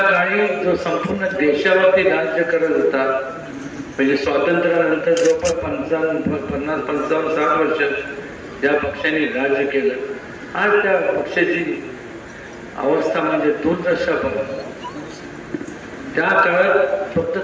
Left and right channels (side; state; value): both; identical; correlation 1.00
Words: काळी जो संपूर्ण देशावरती राज्य करत होता म्हणजे स्वातंत्र्यानंतर जवळपास 50-55-60 वर्ष ज्या पक्षाने राज्य केलं आज त्या पक्षाची अवस्था म्हणजे दुर्दशा बघा. त्या काळात फक्त